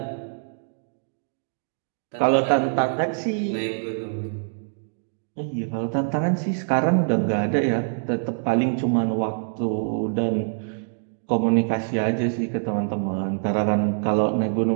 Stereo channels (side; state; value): left; silent; digital silence